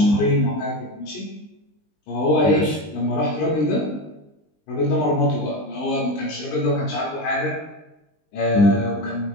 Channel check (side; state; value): right; late; 20 ms